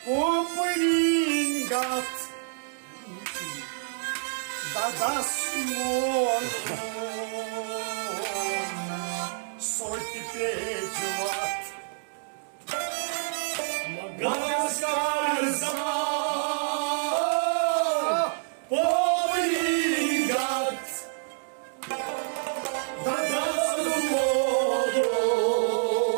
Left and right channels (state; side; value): silent; left; digital silence